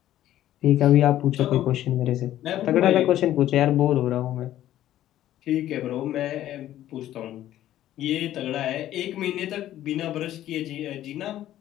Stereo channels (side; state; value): right; quieter; 13.0 dB